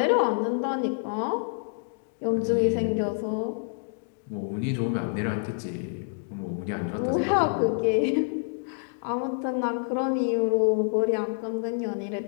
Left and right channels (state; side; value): silent; right; digital silence